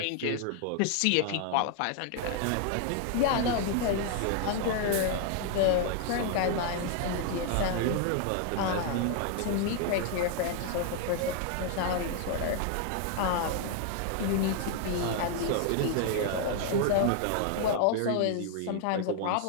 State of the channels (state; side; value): different; both; correlation 0.00